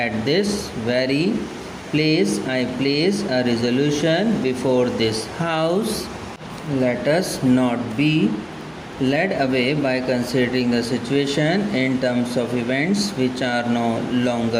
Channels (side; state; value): both; identical; correlation 1.00